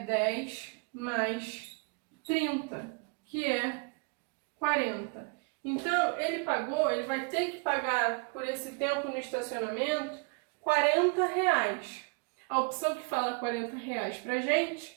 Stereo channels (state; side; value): quieter; left; 33.9 dB